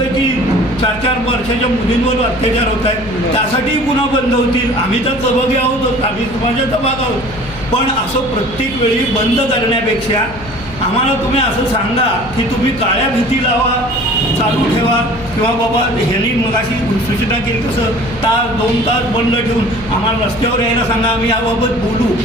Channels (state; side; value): noise; left; hum, 16 dB below the sound